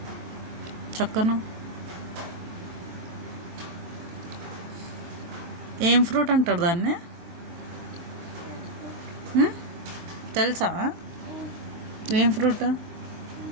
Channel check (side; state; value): left; late; 23 ms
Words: చక్కను. ఏం ఫ్రూట్ అంటారు దాన్ని? తెలుసా? ఏం ఫ్రూట్